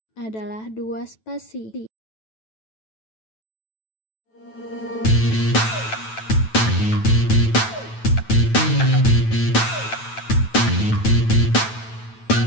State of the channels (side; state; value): right; late; 9.1 ms